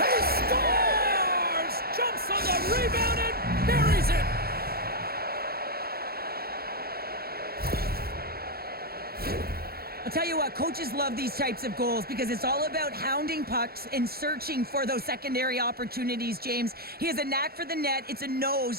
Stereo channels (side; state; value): left; late; 0.45 ms